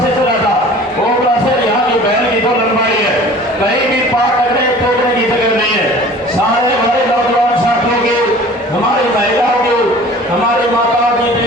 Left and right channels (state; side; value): normal; both; correlation 0.45